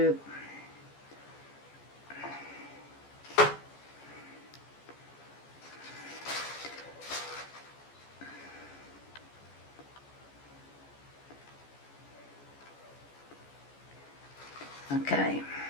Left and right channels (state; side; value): late; right; 14 ms